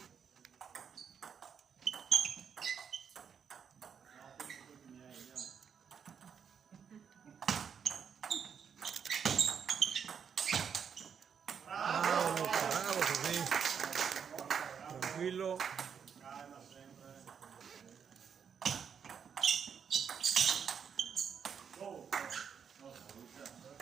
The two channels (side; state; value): left; quieter; 7.2 dB